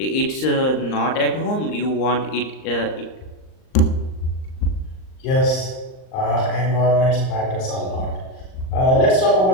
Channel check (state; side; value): late; right; 38 ms